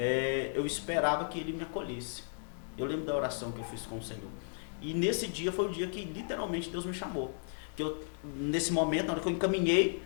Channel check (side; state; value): right; silent; 55 dB below the other